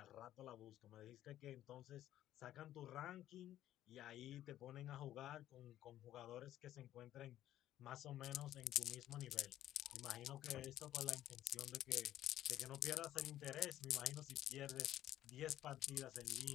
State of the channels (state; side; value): quieter; right; 12.8 dB